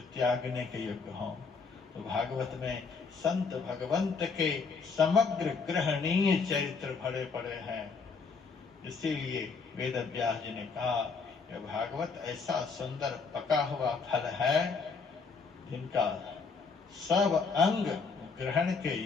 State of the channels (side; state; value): right; quieter; 4.9 dB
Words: त्यागने के योग्य हों। तो भागवत में संत भगवंत के समग्र ग्रहणीय चरित्र भरे पड़े हैं। इसीलिए वेद व्यास जी ने कहा कि भागवत ऐसा सुंदर पका हुआ फल है जिनका सब अंग ग्रहण के